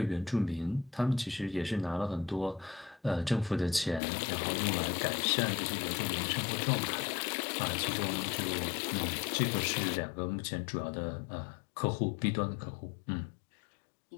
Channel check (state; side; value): drops out; right; at 4.0 s